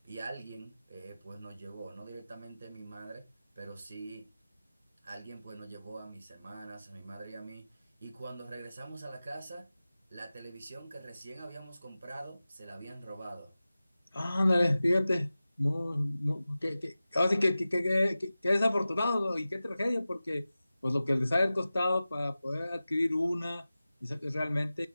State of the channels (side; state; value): both; inverted; correlation -0.96